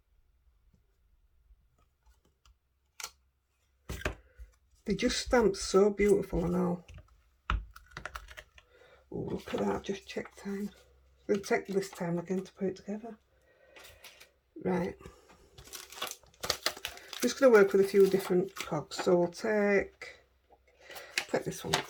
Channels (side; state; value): both; identical; correlation 1.00